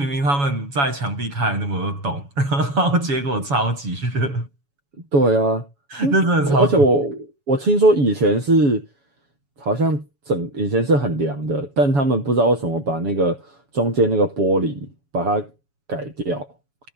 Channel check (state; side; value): late; left; 7.1 ms